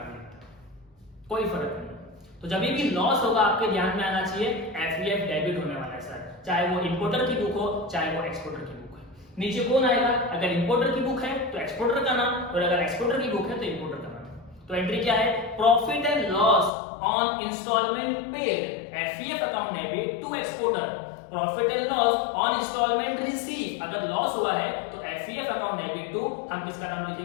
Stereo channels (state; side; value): drops out; right; at 16.7 s